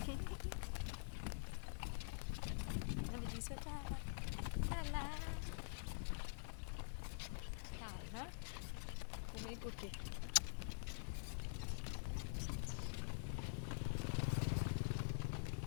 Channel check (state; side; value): silent; right; digital silence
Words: ီစတာလာလာနော်ကိုမေကိုကေ